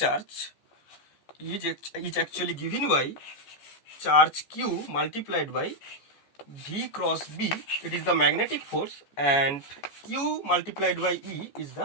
is actually given by charge Q multiplied by V cross B. It is the magnetic force, and Q multiplied by E is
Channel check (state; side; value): late; right; 14 ms